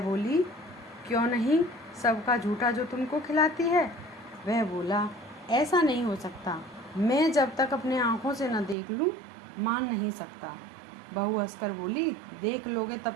बोली, क्यों नहीं, सबका झूठा जो तुमको खिलाती है। वह बोला, ऐसा नहीं हो सकता, मैं जब तक अपने आँखों से न देख लूँ मान नहीं सकता। बहू हंसकर बोली, देख लोगे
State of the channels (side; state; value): left; drops out; at 8.8 s